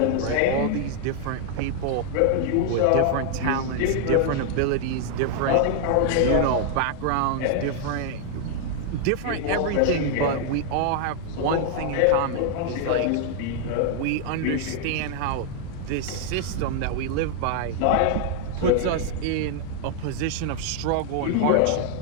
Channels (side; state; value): both; different; correlation 0.00